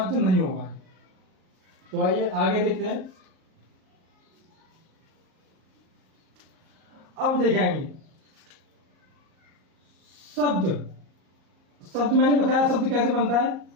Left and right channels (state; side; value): late; left; 38 ms